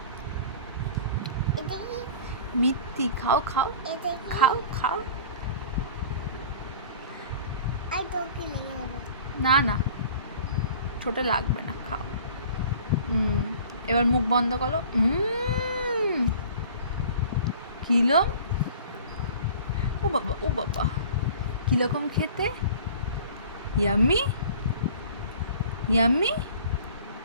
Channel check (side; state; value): both; inverted; correlation -0.45